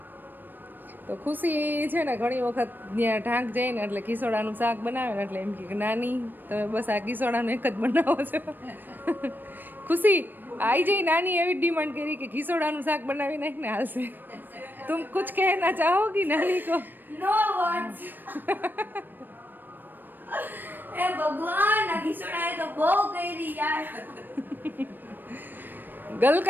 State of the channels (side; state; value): left; late; 0.092 ms